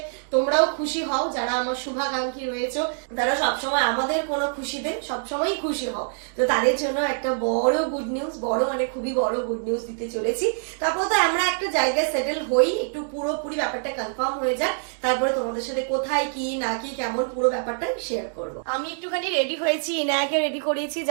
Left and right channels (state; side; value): silent; left; digital silence